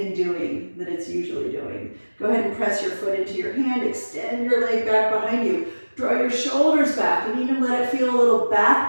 and doing that it's usually doing. Go ahead and press your foot into your hand, extend your leg back behind you, draw your shoulders back, and even let it feel a little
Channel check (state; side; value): inverted; both; correlation -1.00